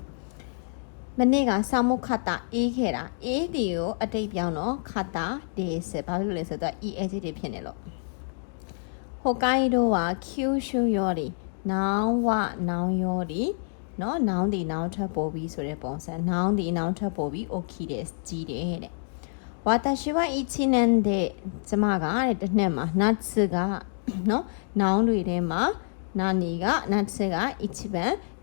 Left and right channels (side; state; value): right; silent; digital silence